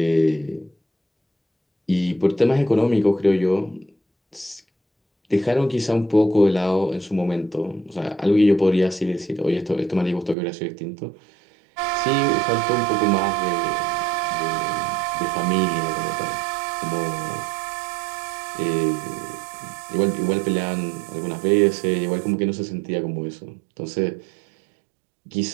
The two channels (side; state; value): left; drops out; at 10.4 s